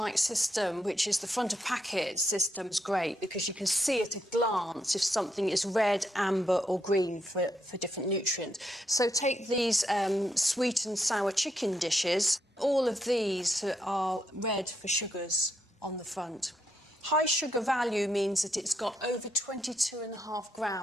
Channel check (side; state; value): both; normal; correlation 0.79